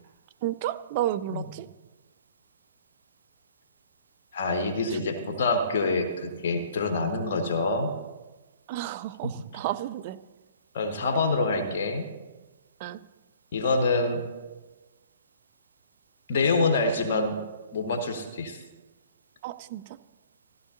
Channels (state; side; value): inverted; both; correlation -0.53